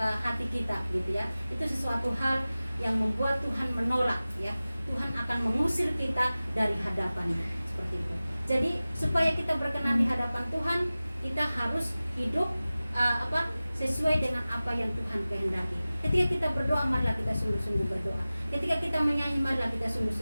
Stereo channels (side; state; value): both; inverted; correlation -0.97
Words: kita, gitu ya. Itu sesuatu hal yang membuat Tuhan menolak, ya. Tuhan akan mengusir kita dari hadapannya, seperti itu. Jadi supaya kita berkenan di hadapan Tuhan, kita harus hidup sesuai dengan apa yang Tuhan kehendaki. Ketika kita berdoa, marilah kita sungguh-sungguh berdoa. Ketika kita menyanyi, marilah kita